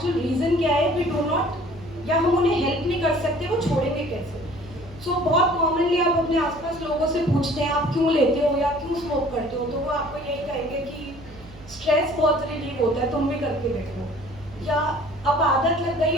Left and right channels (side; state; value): right; noise; hum, 20 dB below the sound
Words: रीज़न क्या है, वी डू नॉट या हम उन्हें हेल्प नहीं कर सकते, वो छोड़ेंगे कैसे. सो बहुत कॉमनली आप अपने आसपास लोगों से पूछते हैं आप क्यों लेते हो या क्यों स्मोक करते हो, तो वो आपको यही कहेंगे कि स्ट्रेस बहुत रिलीव होता है, तुम भी करके देखो, या अब आदत लग गई